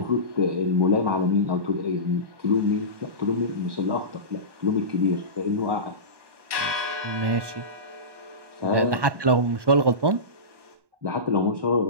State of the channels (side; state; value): left; late; 1.2 ms